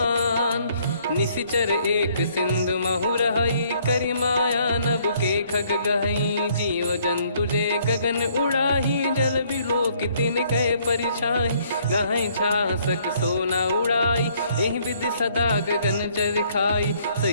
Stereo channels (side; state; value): both; inverted; correlation -0.64